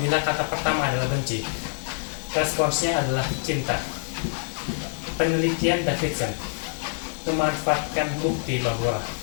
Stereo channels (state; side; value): silent; right; 61 dB below the other